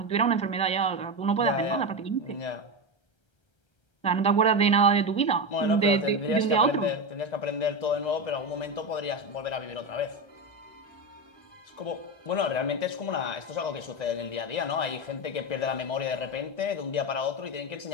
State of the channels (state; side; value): late; right; 1.9 ms